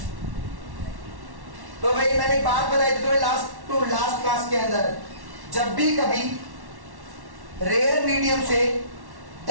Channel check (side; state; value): left; late; 1.1 ms